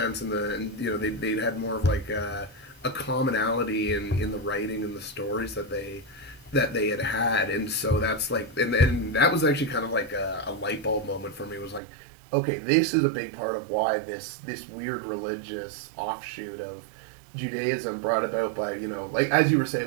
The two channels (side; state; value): left; drops out; at 11.8 s